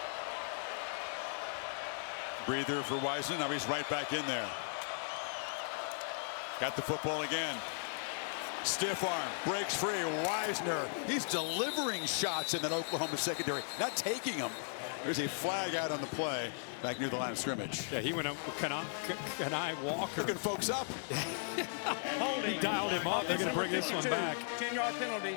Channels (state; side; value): silent; right; 53 dB below the other